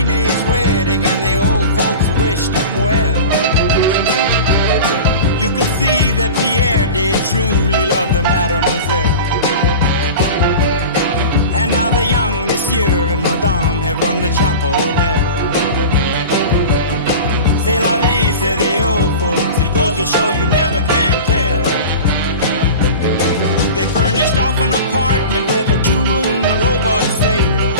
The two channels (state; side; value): inverted; both; correlation -0.33